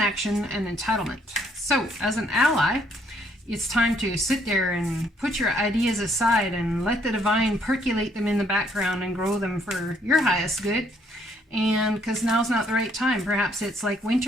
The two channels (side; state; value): both; normal; correlation 0.68